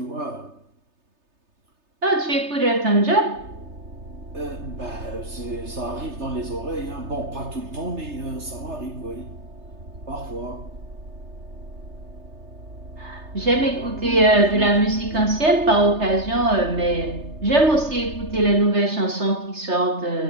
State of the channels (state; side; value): late; left; 3.3 ms